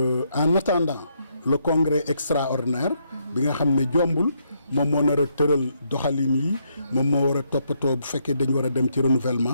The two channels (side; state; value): both; inverted; correlation -0.75